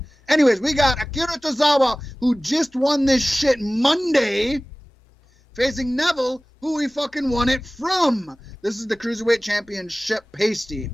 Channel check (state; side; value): normal; both; correlation 0.98